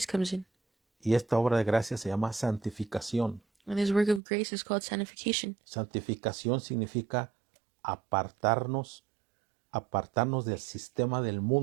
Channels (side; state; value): left; drops out; at 4.2 s